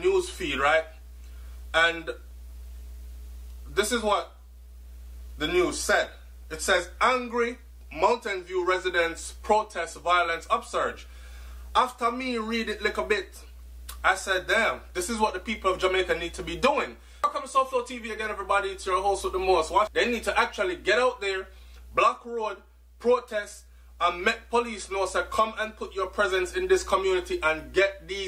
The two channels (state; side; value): identical; both; correlation 1.00